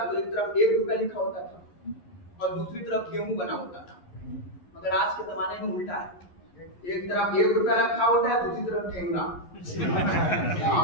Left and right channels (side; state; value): right; late; 11 ms